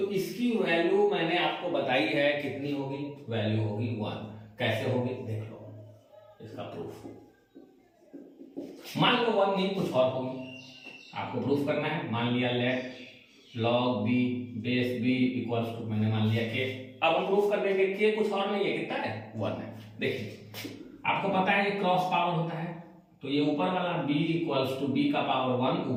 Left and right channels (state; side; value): identical; both; correlation 1.00